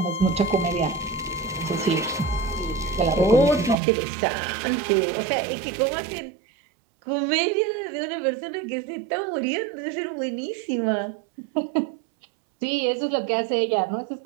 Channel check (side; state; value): left; drops out; at 3.8 s